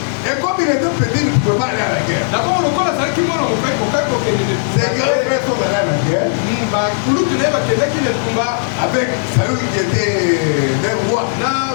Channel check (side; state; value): right; silent; digital silence